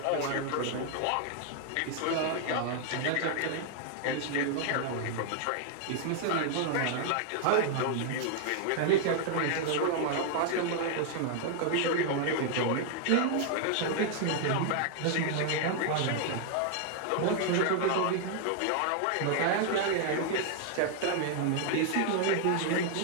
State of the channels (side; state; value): both; different; correlation 0.00